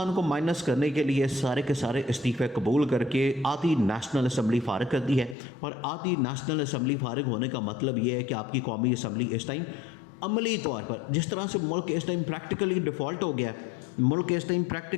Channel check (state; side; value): drops out; right; at 5.4 s